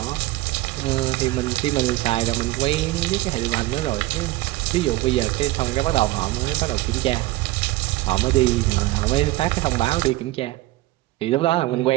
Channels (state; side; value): quieter; left; 18.3 dB